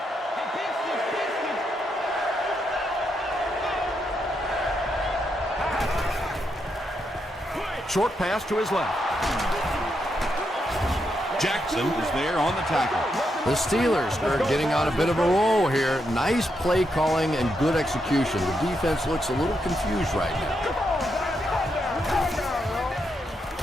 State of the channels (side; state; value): both; normal; correlation 0.81